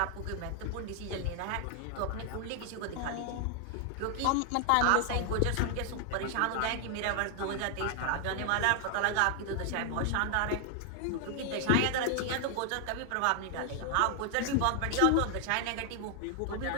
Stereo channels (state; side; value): different; both; correlation 0.00